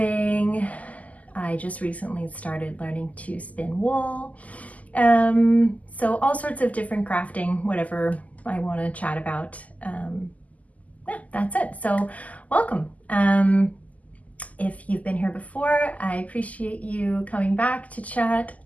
I just recently started learning to spin wool. So all sorts of different crafting, whatever I want to chat about. Yeah, that's it. So welcome. If you've been here before, I appreciate you coming back to chat.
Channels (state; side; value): late; right; 0.075 ms